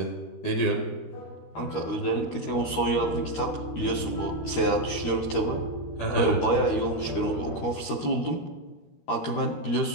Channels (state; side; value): late; right; 13 ms